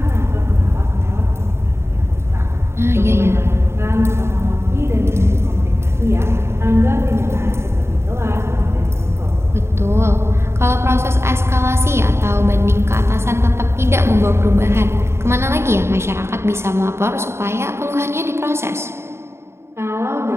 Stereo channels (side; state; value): left; late; 0.12 ms